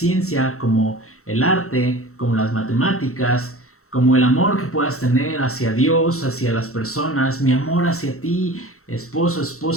como el arte, como las matemáticas, como el amor que puedas tener hacia Dios, hacia las personas, mi amor hacia ti, esposo,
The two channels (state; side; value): late; right; 0.63 ms